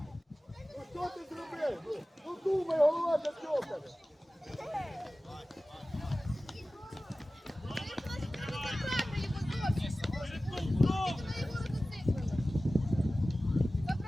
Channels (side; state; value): both; normal; correlation 0.96